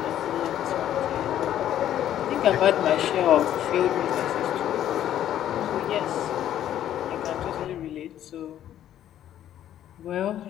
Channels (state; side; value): quieter; right; 11.4 dB